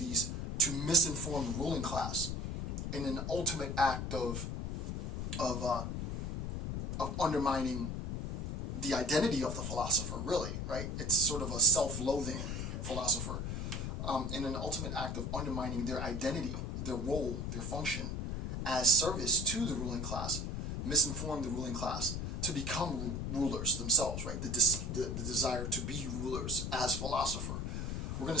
to misinform the ruling class in an ultimate act of undermining the identity of the philosopher, really, right? It's sort of a self-loathing philosopher, in an ultimate act of undermining their identity, their role, their function as service to the ruling class, misinform the ruling class to become rulers themselves, right? The desire to be rulers as philosopher. We're going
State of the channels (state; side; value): noise; left; rumble, 3 dB below the sound